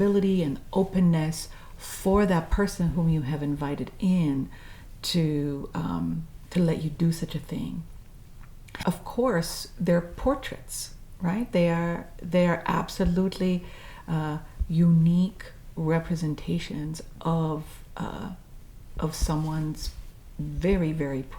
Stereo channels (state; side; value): identical; both; correlation 1.00